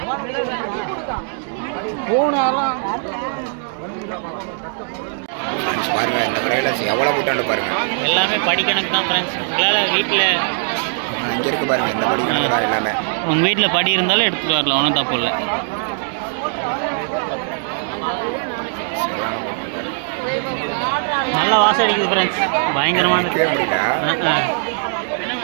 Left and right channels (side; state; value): left; silent; 62 dB below the other